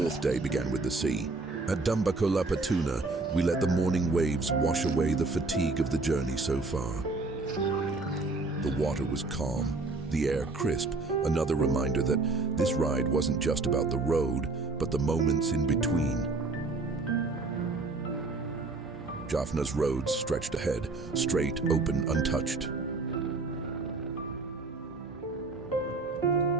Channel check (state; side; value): quieter; left; 3.5 dB